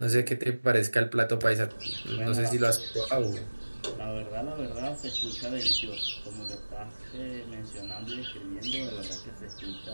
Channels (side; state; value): both; inverted; correlation -1.00